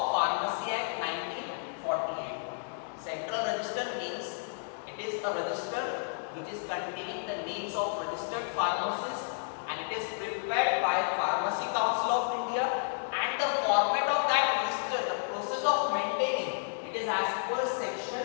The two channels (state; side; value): silent; right; digital silence